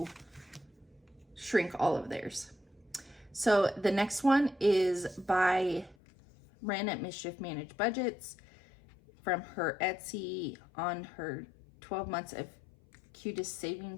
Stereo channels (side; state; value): right; drops out; at 6.0 s